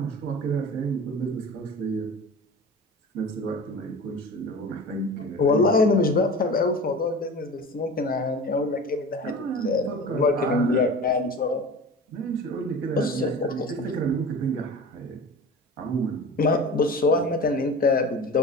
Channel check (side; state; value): both; normal; correlation 0.35